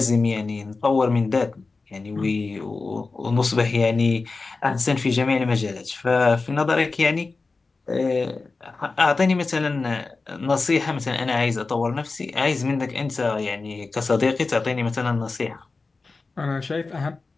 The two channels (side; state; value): right; quieter; 3.9 dB